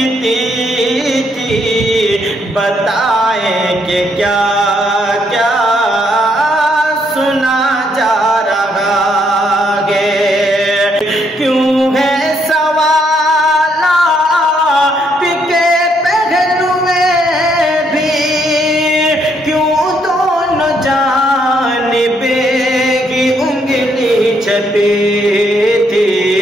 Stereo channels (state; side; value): normal; both; correlation 0.72